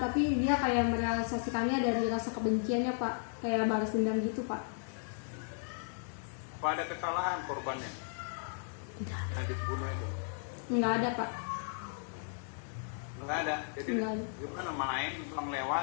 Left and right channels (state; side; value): silent; right; digital silence